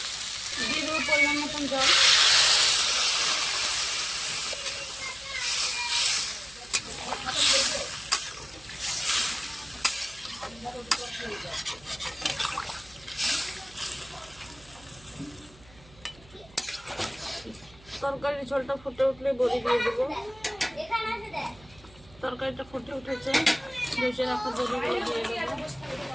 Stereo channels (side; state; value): right; noise; hum, 23 dB below the sound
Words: দিয়ে দেবো পরিমাণ মতন জল, তরকারির ঝোলটা ফুটে উঠলে বড়ি দিয়ে দেবো। তরকারিটা ফুটে উঠেছে, ভেজে রাখা বড়িগুলো দিয়ে দেবো।